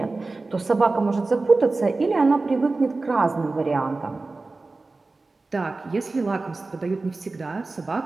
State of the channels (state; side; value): quieter; left; 3.5 dB